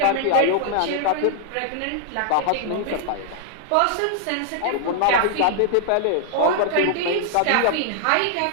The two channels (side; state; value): both; different; correlation 0.00